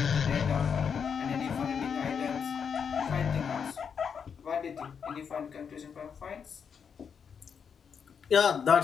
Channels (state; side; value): quieter; right; 6.8 dB